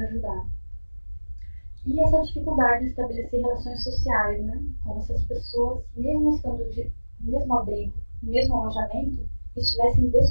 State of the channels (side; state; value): both; inverted; correlation -1.00